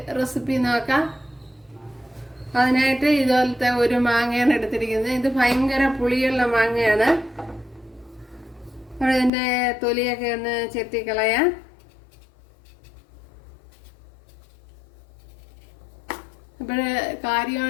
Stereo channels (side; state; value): right; drops out; at 9.3 s